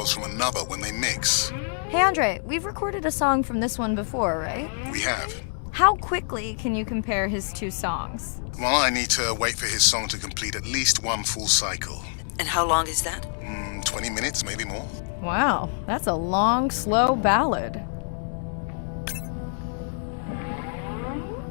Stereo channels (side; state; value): right; silent; digital silence